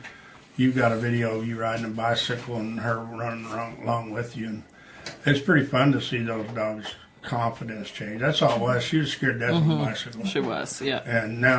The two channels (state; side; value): identical; both; correlation 1.00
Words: You got a video of you riding a bicycle and her running along with you. And it's pretty fun to see those dogs' confidence change. That's all it was. She was scared to death of a bicycle. She was, yeah. And